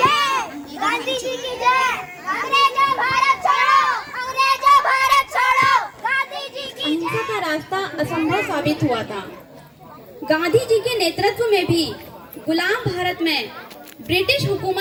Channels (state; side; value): identical; both; correlation 1.00